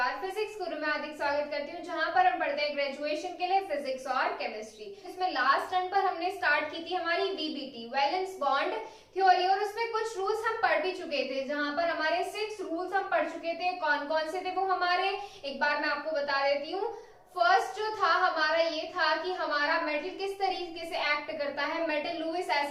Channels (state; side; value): identical; both; correlation 1.00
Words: फिजिक्स गुरु में हार्दिक स्वागत करती हूँ, जहां पर हम पढ़ते हैं ग्रेजुएशन के लिए फिजिक्स और केमिस्ट्री। इसमें लास्ट टर्म पर हमने स्टार्ट की थी हमारी वीबीटी वैलेंस बॉन्ड थ्योरी, और उसमें कुछ रूल्स हम पढ़ भी चुके थे, जहां पर हमारे 6 रूल्स हम पढ़ चुके थे। कौन कौन से थे वो हमारे, एक बार मैं आपको बता देती हूँ। फर्स्ट जो था हमारा ये था कि हमारा मेटल किस तरीके से एक्ट करता है। मेटल लुईस